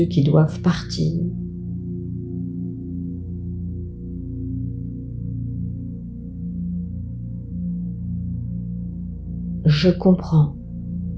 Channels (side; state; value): both; identical; correlation 1.00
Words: qui doivent partir. Je comprends